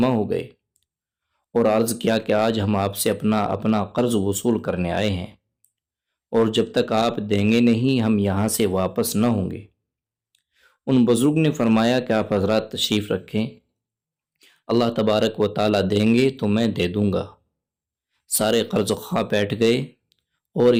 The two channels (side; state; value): both; identical; correlation 1.00